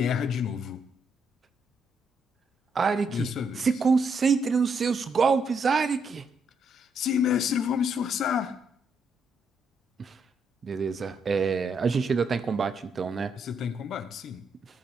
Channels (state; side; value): normal; both; correlation 0.76